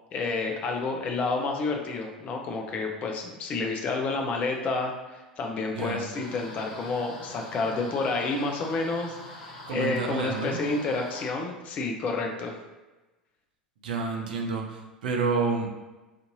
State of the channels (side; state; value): both; normal; correlation 0.40